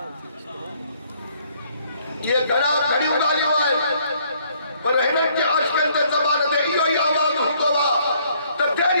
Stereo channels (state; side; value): inverted; both; correlation -0.65